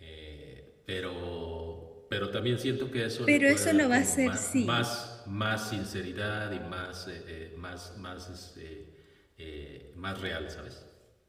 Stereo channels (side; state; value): both; identical; correlation 1.00